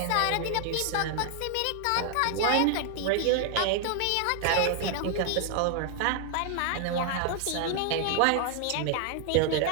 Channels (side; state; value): both; different; correlation 0.00